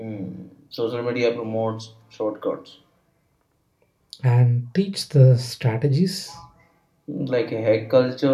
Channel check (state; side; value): identical; both; correlation 1.00